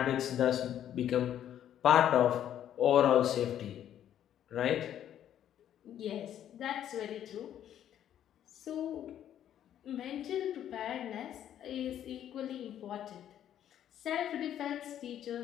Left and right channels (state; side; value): quieter; right; 10.6 dB